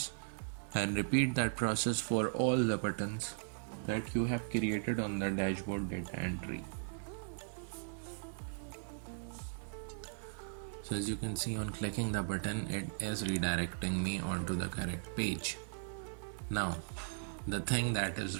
and repeat that process for all the buttons that you have created on the dashboard data entry. So as you can see, on clicking the button, it is redirecting me onto the correct page. Now the thing that is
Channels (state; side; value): silent; left; digital silence